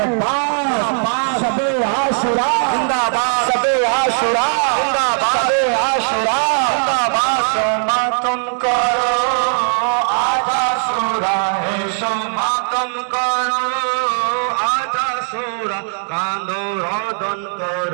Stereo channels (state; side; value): silent; left; 67 dB below the other